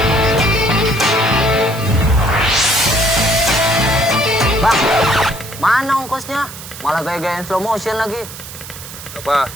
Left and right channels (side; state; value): right; noise; hiss, 13 dB below the sound